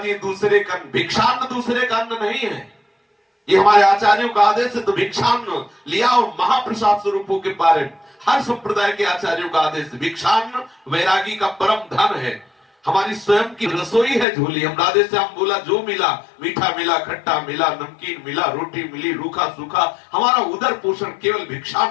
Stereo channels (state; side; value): drops out; right; at 14.2 s